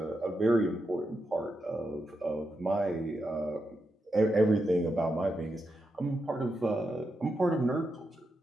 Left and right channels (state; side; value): normal; both; correlation 0.86